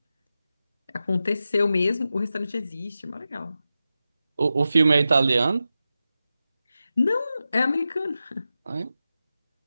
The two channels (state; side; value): inverted; both; correlation -0.92